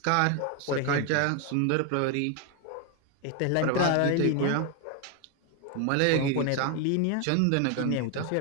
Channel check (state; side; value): different; both; correlation 0.01